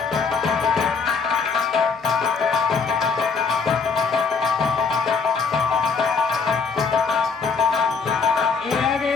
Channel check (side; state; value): right; quieter; 5.1 dB